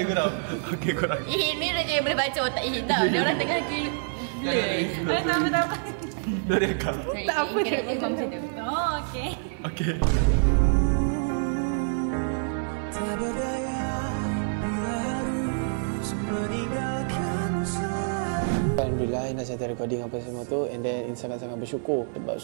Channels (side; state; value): left; silent; digital silence